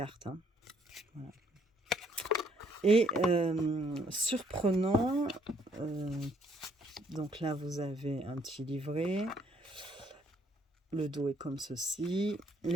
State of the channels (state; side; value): normal; both; correlation 0.67